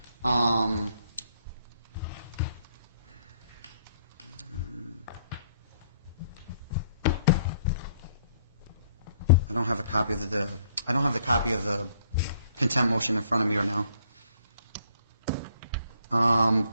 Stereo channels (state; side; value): inverted; both; correlation -0.65